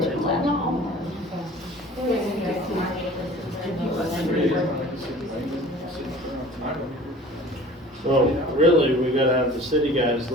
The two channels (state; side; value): normal; both; correlation 0.45